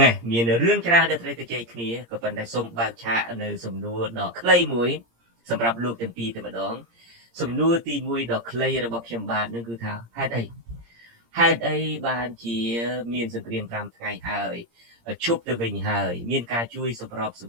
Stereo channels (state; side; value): late; left; 17 ms